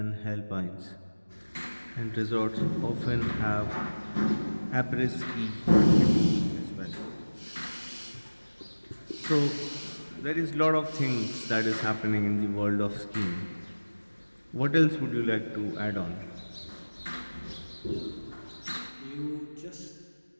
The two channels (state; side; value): inverted; both; correlation -1.00